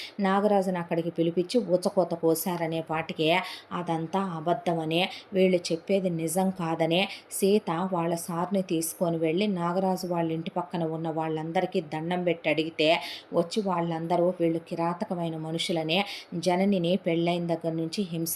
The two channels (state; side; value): identical; both; correlation 1.00